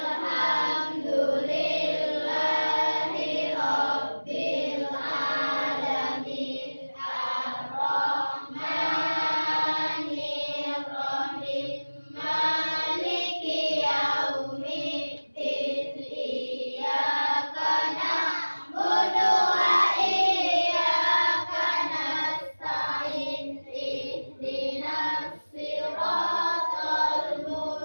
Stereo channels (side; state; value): both; inverted; correlation -1.00